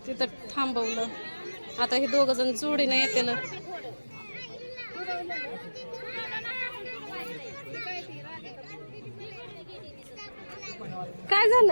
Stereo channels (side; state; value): both; inverted; correlation -1.00